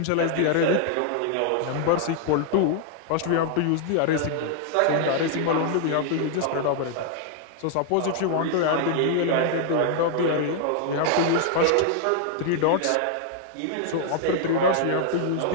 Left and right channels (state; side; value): different; both; correlation 0.00